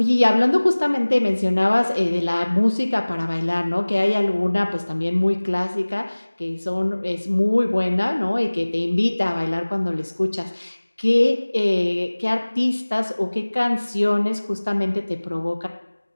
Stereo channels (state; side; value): inverted; both; correlation -1.00